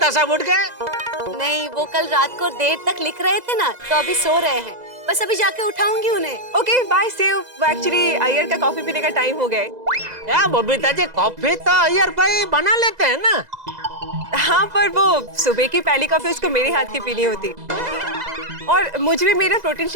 साहब उठ गए? नहीं, वो कल रात को देर तक लिख रहे थे ना, तो अभी सो रहे हैं। बस अभी जाके उठाऊंगी उन्हें। Okay bye, see you. Actually Iyer का कॉफी पीने का टाइम हो गया है। क्या बबीता जी, कॉफी तो अय्यर भाई बना लेते हैं ना। हाँ, पर वो सुबह की पहली कॉफी उसको मेरे हाथ की पीनी होती, और मुझे भी मेरा प्रोटीन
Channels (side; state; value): left; late; 2.0 ms